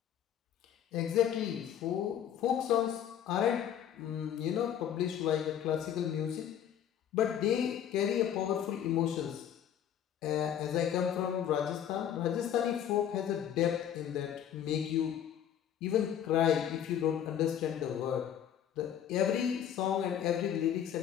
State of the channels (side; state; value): right; quieter; 9.7 dB